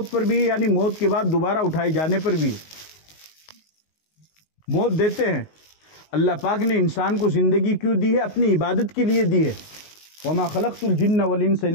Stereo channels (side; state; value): right; late; 19 ms